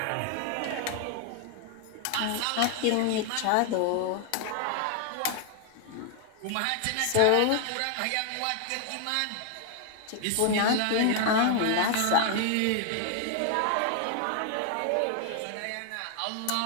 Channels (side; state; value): both; different; correlation 0.00